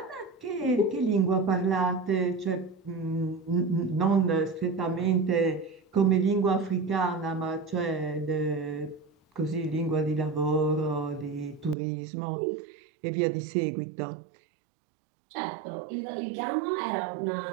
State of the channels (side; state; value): left; drops out; at 11.8 s